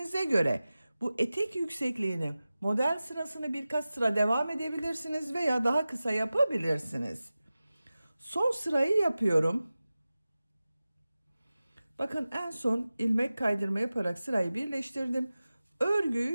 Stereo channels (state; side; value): inverted; both; correlation -0.96